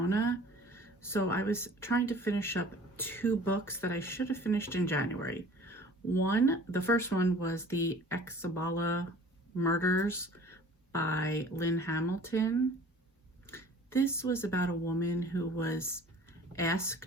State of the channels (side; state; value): both; normal; correlation 0.47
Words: So I was trying to finish up 2 books that I should have finished in January. The first one was the Exabala Murders by Lynn Hamilton. This was about a woman who was